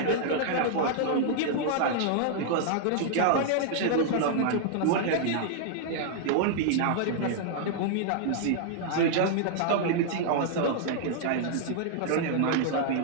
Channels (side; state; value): both; different; correlation -0.01